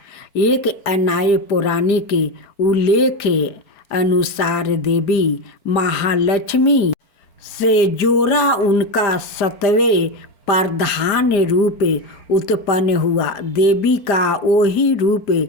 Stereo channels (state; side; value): late; right; 4.5 ms